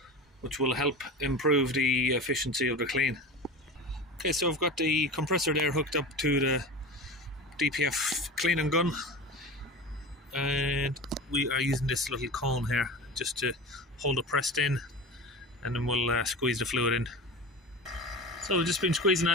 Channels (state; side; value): normal; both; correlation 0.31